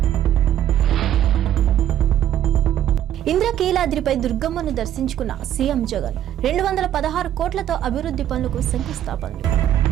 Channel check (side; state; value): left; quieter; 11.1 dB